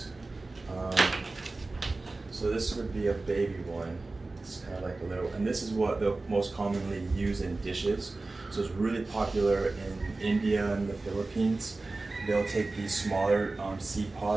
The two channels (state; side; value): quieter; left; 3.3 dB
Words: So this would be a baby one. It's kind of like a little, and this is what they'll most commonly use in dishes. So it's really popular in India and the Philippines. They'll take these smaller seed